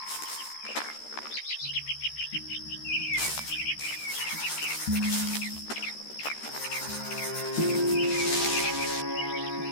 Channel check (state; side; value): late; right; 13 ms